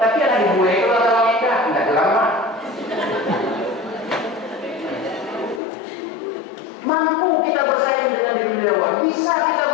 Tapi ada dibuat kalau dalam kita tidak lama. Mampu kita bersaing dengan dunia luar, bisa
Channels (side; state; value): right; drops out; at 5.6 s